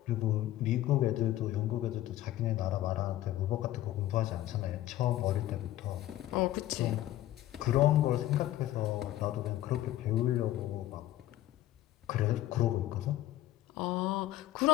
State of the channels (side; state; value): right; quieter; 14.2 dB